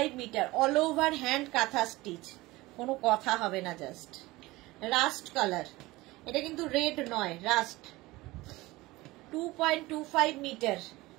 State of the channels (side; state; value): left; quieter; 20.0 dB